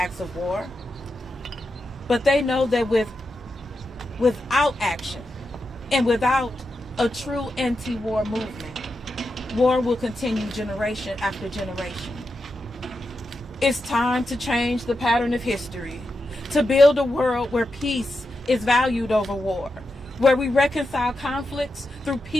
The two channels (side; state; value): both; normal; correlation 0.88